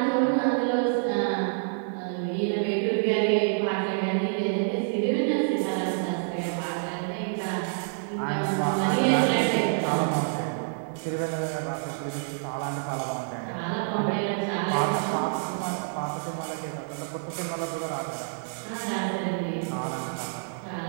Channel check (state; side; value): silent; left; digital silence